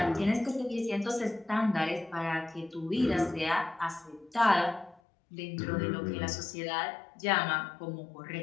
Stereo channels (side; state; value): right; drops out; at 5.0 s